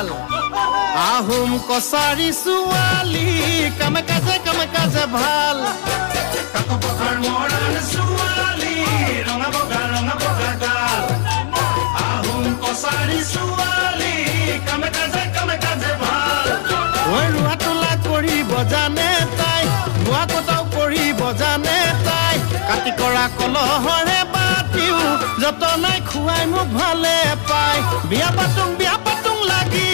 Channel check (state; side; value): silent; right; digital silence